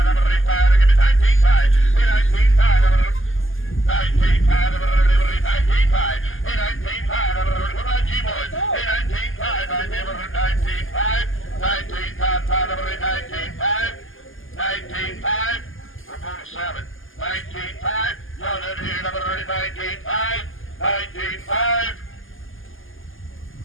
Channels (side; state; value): right; late; 0.59 ms